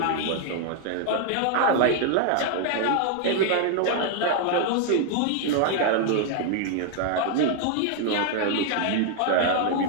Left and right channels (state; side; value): different; both; correlation 0.00